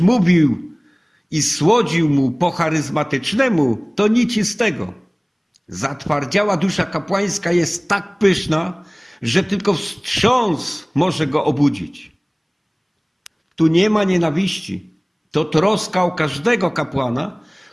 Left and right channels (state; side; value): identical; both; correlation 1.00